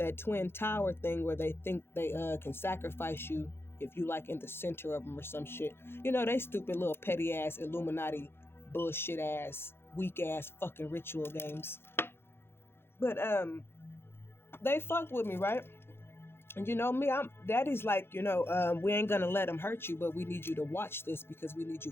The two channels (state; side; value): late; right; 0.11 ms